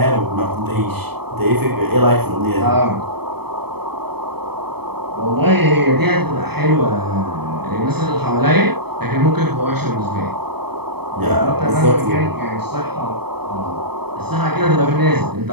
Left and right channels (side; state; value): left; late; 0.97 ms